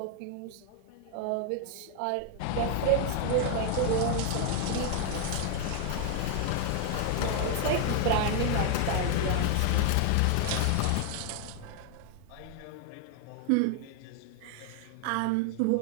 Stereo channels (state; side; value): different; both; correlation 0.00